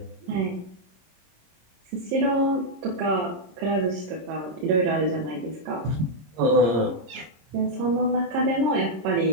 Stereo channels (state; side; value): late; left; 26 ms